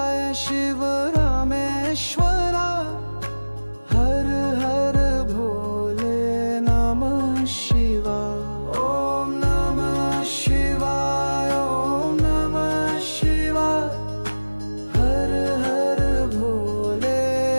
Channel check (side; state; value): both; inverted; correlation -1.00